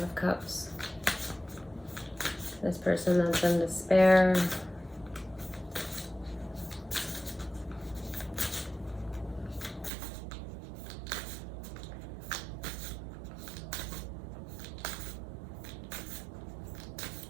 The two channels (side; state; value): left; drops out; at 9.9 s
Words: Cups. This person that's in despair.